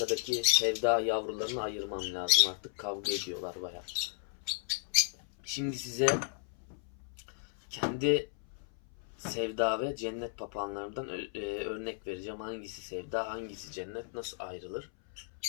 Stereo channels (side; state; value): right; silent; 55 dB below the other